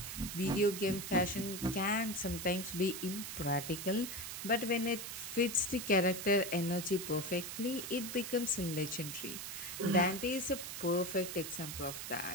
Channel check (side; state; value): right; noise; hiss, 7 dB below the sound